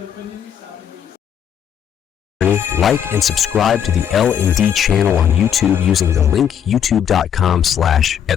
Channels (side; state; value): right; quieter; 8.8 dB